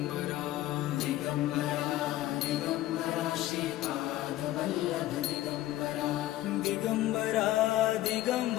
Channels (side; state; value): right; quieter; 15.0 dB